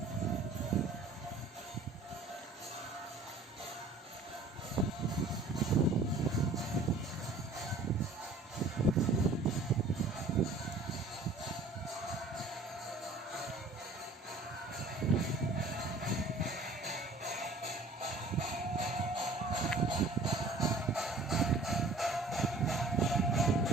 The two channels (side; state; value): left; quieter; 3.1 dB